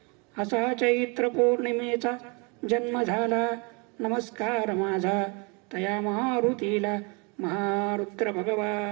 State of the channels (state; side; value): quieter; left; 31.3 dB